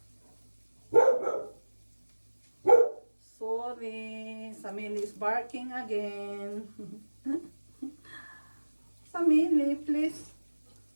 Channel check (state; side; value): inverted; both; correlation -1.00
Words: Sorry, Samili is barking again. Samili, please.